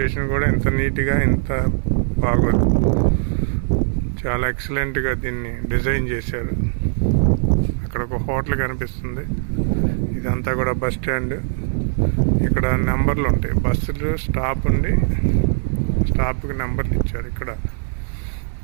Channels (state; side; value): silent; left; 65 dB below the other